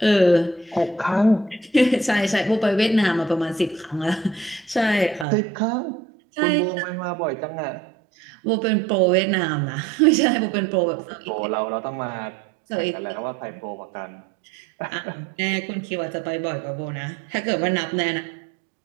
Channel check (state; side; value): drops out; left; at 5.2 s